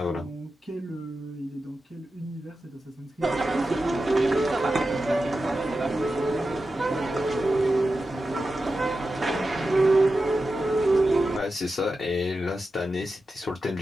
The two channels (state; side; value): normal; both; correlation 0.91